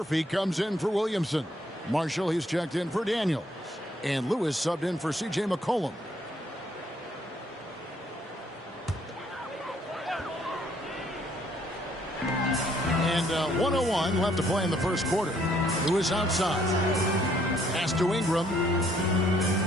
comes in for Williamson. Marshall, he's checked in for Daniels. And Lewis subbed in for C.J. McCollum. And 1:01 left to play in the first quarter. Lewis outside. Pass to Ingram.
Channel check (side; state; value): both; normal; correlation 0.66